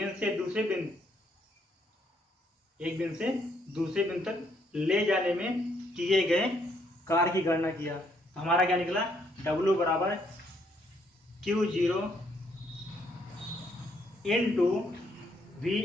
से दूसरे बिंदु तक ले जाने में किए गए कार्य की गणना किया। तो हमारा क्या निकला, W बराबर Q0 into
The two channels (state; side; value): normal; both; correlation 0.71